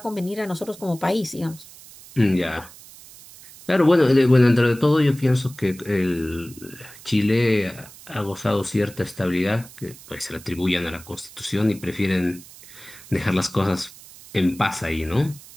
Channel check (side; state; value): right; noise; hiss, 19 dB below the sound